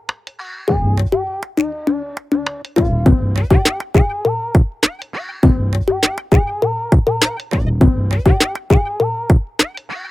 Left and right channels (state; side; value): normal; both; correlation 0.96